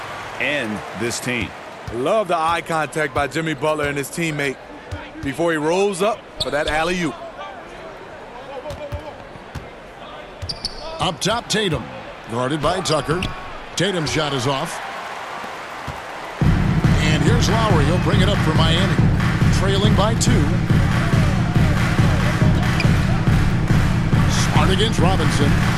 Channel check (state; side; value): identical; both; correlation 1.00